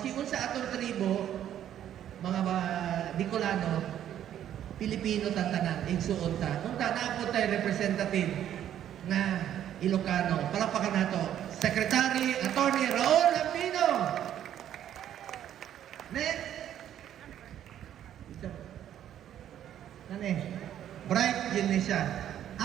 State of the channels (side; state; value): left; quieter; 10.8 dB